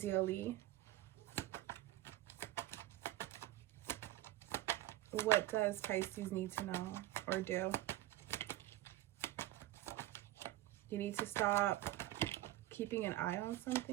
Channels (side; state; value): left; quieter; 15.5 dB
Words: What does Pisces need to know or do? You need to stop keeping an eye on